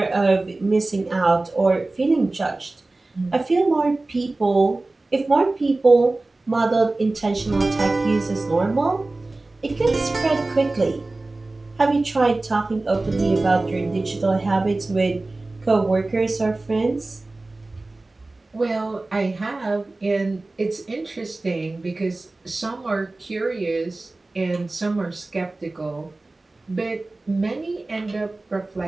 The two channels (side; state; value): left; quieter; 3.1 dB